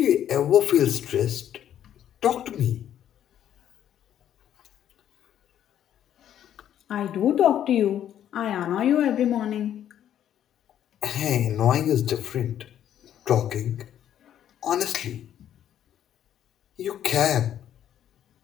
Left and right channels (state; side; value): quieter; right; 10.5 dB